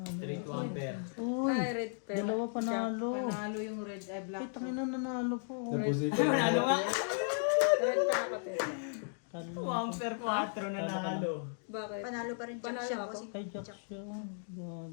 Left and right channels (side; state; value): right; silent; digital silence